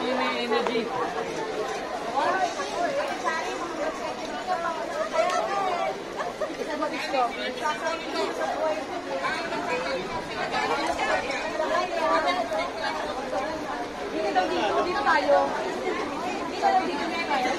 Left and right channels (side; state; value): both; identical; correlation 1.00